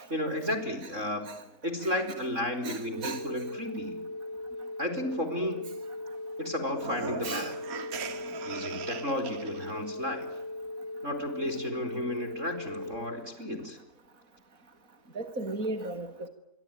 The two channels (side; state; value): left; late; 4.0 ms